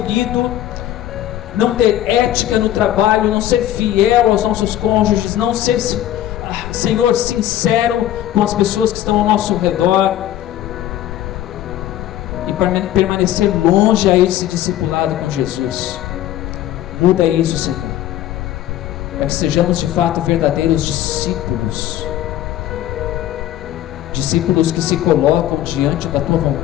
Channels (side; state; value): right; quieter; 12.8 dB